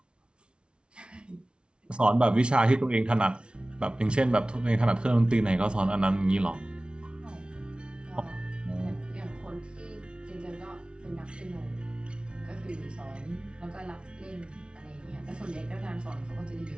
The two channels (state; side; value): late; left; 0.057 ms